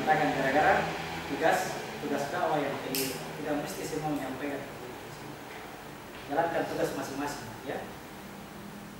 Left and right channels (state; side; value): identical; both; correlation 1.00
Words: gara-gara tugas dakwah yang keliru. Tidak mesti semua menyampaikan. Jalankan tugas masing-masing, ya.